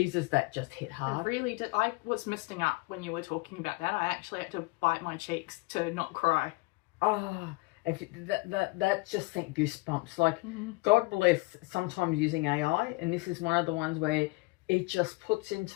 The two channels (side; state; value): right; quieter; 25.4 dB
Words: that just hit hard. I really did. I was misting up when you were talking about that. I actually had to bite my cheeks to not cry. Oh, that just sent goosebumps. Like, God bless sometimes using AI, and this is one of the ones where it just puts